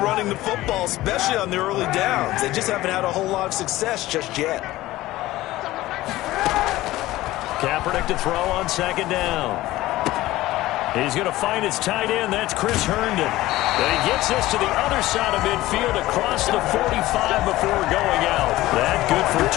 the football, especially on the early downs. They just haven't had a whole lot of success just yet. Kaepernick to throw on 2nd down. He's going to find his tight end. That's Chris Herndon. And he gets this to the other side of midfield across the 45 before going out. That good for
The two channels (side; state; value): right; quieter; 16.9 dB